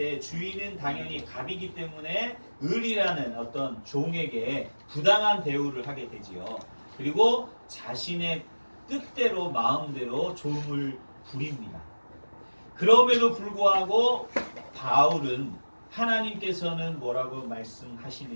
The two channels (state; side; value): inverted; both; correlation -1.00